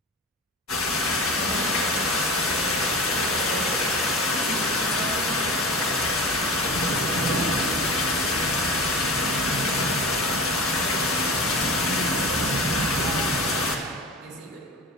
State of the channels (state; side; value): normal; both; correlation 0.31